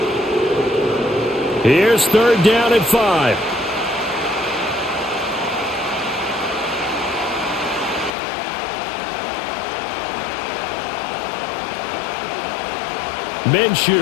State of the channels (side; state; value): right; drops out; at 8.1 s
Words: Here's 3rd down at 5.